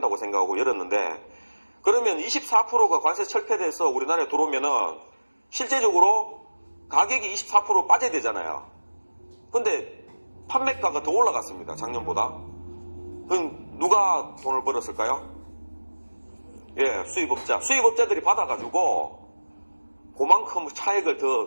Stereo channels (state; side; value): inverted; both; correlation -1.00